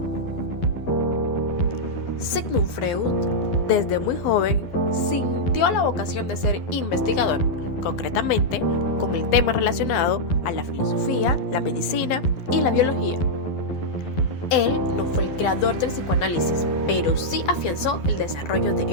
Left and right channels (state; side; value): late; right; 11 ms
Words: Sigmund Freud, desde muy joven, sintió la vocación de ser investigador, concretamente con el tema relacionado a la filosofía, la medicina y la biología. Él no fue el creador del psicoanálisis, pero sí afianzó el desarrollo